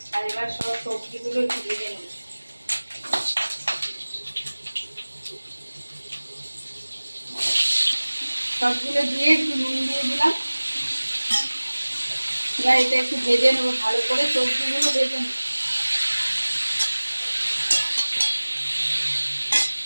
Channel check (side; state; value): both; inverted; correlation -1.00